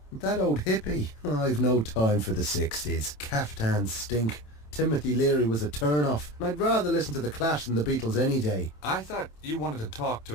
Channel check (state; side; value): late; right; 27 ms